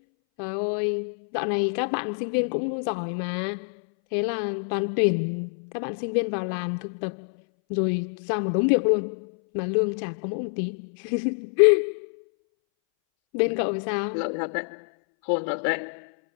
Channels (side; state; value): right; silent; 61 dB below the other